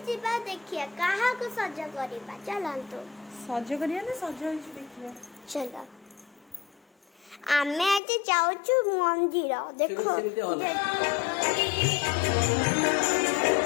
जीवा देखिया कहा को सज करिबा चलंतु सज करिया ना सज होइछ देखिया चलो आमे आज जाउछु मंदिर देखो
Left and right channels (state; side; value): drops out; right; at 8.0 s